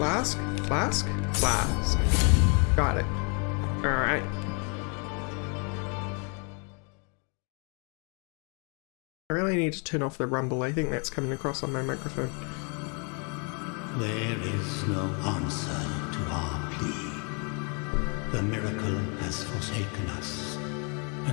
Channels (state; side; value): quieter; right; 36.6 dB